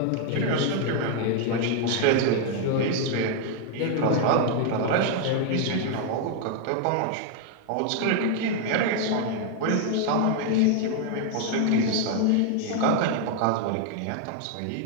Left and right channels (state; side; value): different; both; correlation 0.00